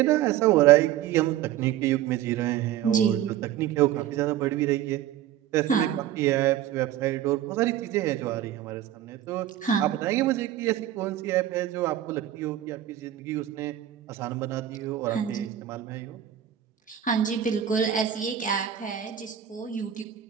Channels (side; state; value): left; quieter; 11.5 dB